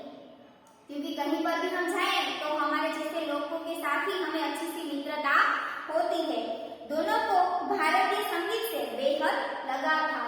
क्योंकि कहीं पर भी हम जाएं तो हमारे जैसे लोगों के साथ ही हमें अच्छी सी मित्रता होती है। दोनों को भारतीय संगीत से बेहद लगाव था।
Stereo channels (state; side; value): identical; both; correlation 1.00